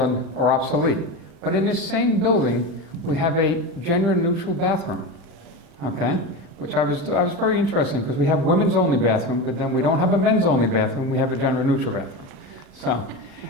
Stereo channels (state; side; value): late; left; 35 ms